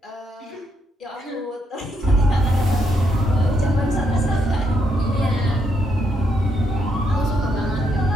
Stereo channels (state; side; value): normal; both; correlation 0.77